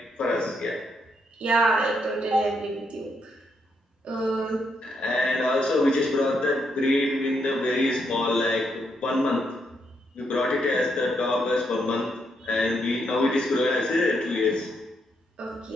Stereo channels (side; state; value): both; normal; correlation 0.78